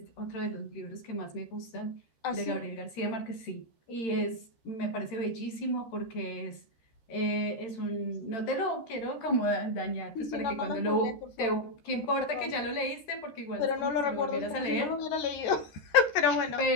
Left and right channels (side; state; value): right; late; 13 ms